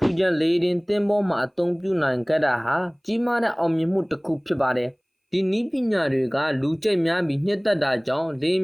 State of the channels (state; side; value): identical; both; correlation 1.00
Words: ူရန်လေရင်သင်းမောမှာအသုံးပြုနိုင်ခဲ့တာဟာကြီးမားတဲ့အောင်မြင်မှုတစ်ခုဖြစ်ပါတယ်။ဒီနည်းပညာတွေကလူကြိတ်များပြီးနှစ်သက်တာကြောင့်လေယာဉ်